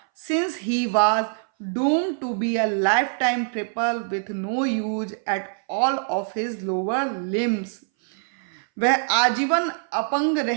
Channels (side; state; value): left; silent; 60 dB below the other